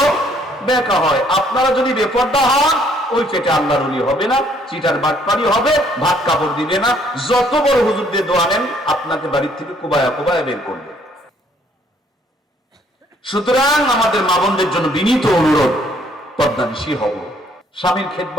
বেঁকা হয়। আপনারা যদি বেপর্দা হন, ওই পেটে আল্লাহর ওলি হবে না, চিটার বাটপারি হবে, ভাত কাপড় দিবে না, যত বড় হুজুর দিয়ে দোয়া নেন আপনাকে বাড়ির থেকে কোবায়া কোবায়া বের করবে। সুতরাং আমাদের মা বোনদের জন্য বিনীত অনুরোধ, পর্দানিশী হব, স্বামীর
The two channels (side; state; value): both; normal; correlation 0.64